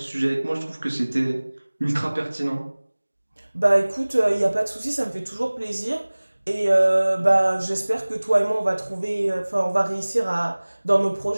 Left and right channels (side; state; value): both; inverted; correlation -1.00